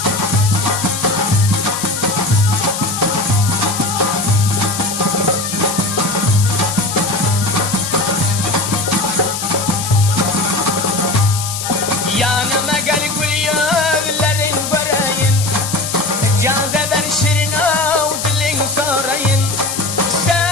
Yanıma gel gül yüzlerin göreyim Caze ben şirin av dilin sorayım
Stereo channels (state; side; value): noise; left; hiss, 5 dB below the sound